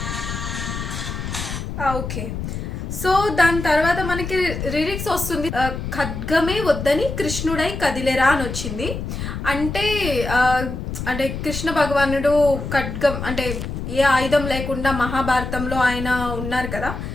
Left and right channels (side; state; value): left; noise; rumble, 6 dB below the sound